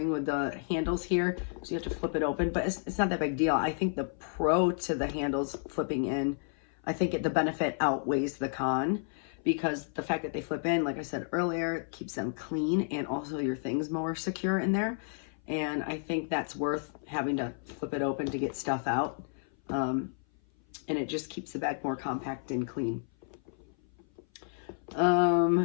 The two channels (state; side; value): silent; right; 56 dB below the other